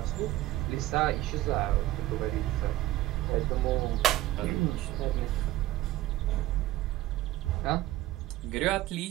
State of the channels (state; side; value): quieter; left; 15.8 dB